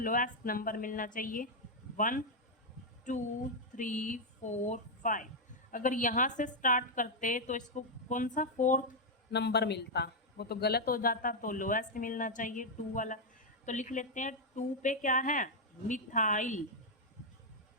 नंबर मिलना चाहिए 1 2 3 4 5। अगर यहाँ से स्टार्ट करते तो इसको कौन सा फोर्थ नंबर मिलता, वो तो गलत हो जाता, तो लोएस्ट मिलना चाहिए 2 वाला। तो लिख लेते हैं 2 पे क्या है, मिथाइल,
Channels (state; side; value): normal; both; correlation -0.01